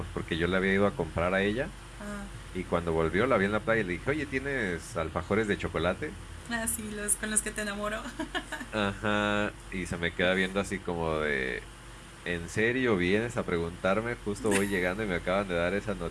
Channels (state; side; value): identical; both; correlation 1.00